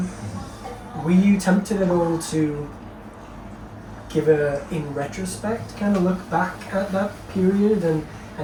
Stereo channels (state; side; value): identical; both; correlation 1.00